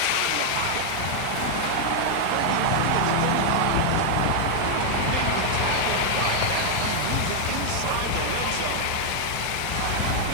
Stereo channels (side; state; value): both; different; correlation 0.00